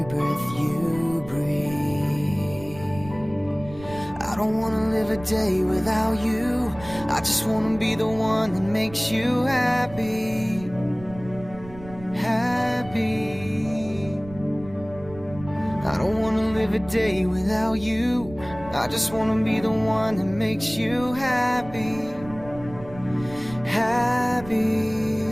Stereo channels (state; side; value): noise; right; rumble, 17 dB below the sound